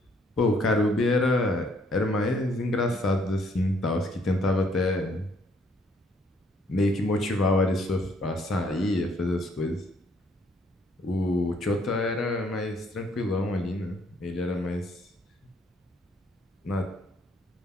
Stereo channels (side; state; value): both; normal; correlation 0.66